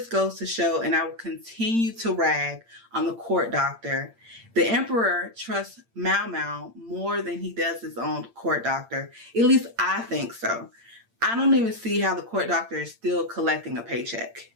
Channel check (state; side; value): late; left; 8.7 ms